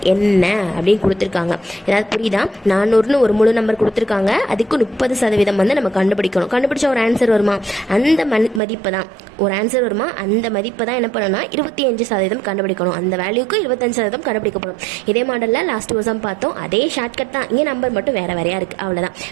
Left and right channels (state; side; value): drops out; left; at 8.6 s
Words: என்ன அப்படின்னு கொடுத்துருக்காங்க. ஏதாவது புரியுதா? 400ன்னு ஒரு முழு நம்பர் கொடுத்துருக்காங்க, அதுக்கு 30% வந்து நம்ம கண்டுபிடிக்கணும். கண்டுபிடிச்ச ஒரு ஆன்சர் வருமா? அந்த மதிப்பை தான் ஒரு ஆன்சர் வருமா? அந்த மதிப்பை தான் என்ன பண்ணணும்னா 25% கண்டுபிடிக்கணும். அந்த வேல்யூக்கு 25% கண்டுபிடிக்கப்படும். இதே மாடலில் லாஸ்ட் வருஷம் பார்த்தோம். அதே ஷார்ட்கட் தான், இங்கே நம்பர் மட்டும் வேற வேறையா இருக்கு, அவ்வளோதான்.